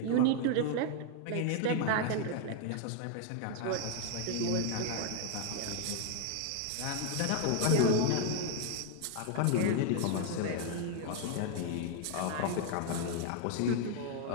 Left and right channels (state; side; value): different; both; correlation 0.00